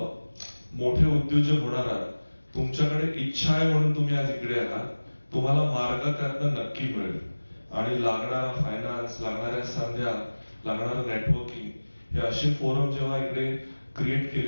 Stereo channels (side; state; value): both; inverted; correlation -1.00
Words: मोठे उद्योजक होणार आहात तुमच्याकडे इच्छा आहे म्हणून तुम्ही आज इकडे आहात तुम्हाला मार्ग त्यातनं नक्की मिळेल आणि लागणारा फायनान्स लागणाऱ्या संध्या लागणारं नेटवर्किंग हे असे फोरम जेव्हा इकडे क्रिएट